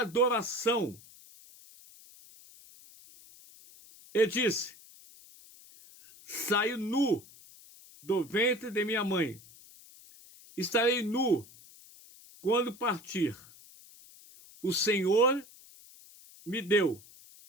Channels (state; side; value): noise; left; hiss, 22 dB below the sound